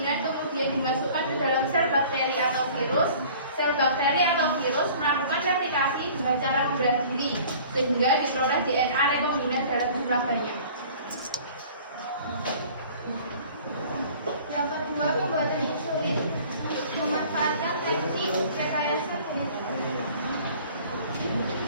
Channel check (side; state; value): both; inverted; correlation -0.48